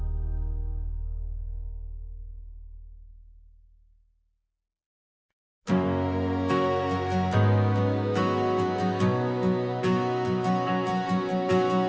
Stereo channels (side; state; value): both; identical; correlation 1.00